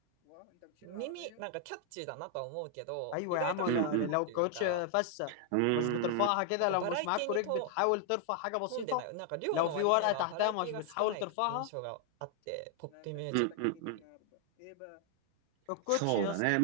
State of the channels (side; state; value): both; different; correlation 0.00